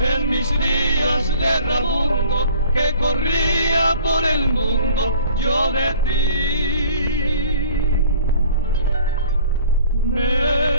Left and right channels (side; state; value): both; inverted; correlation -0.50